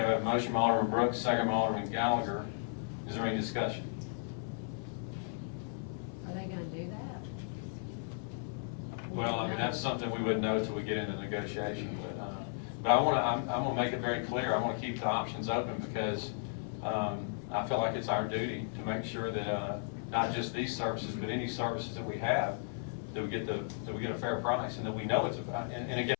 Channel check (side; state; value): right; silent; 54 dB below the other